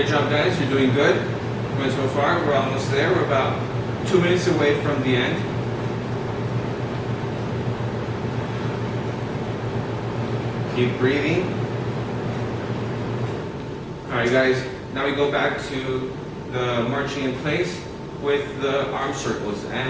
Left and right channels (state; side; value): identical; both; correlation 1.00